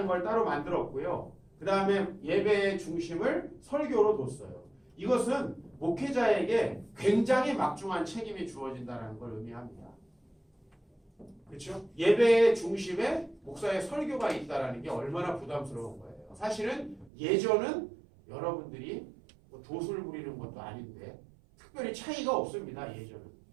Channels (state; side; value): drops out; left; at 17.1 s